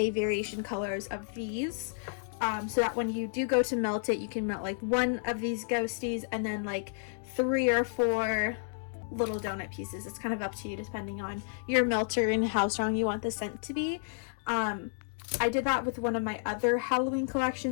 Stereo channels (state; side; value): silent; right; digital silence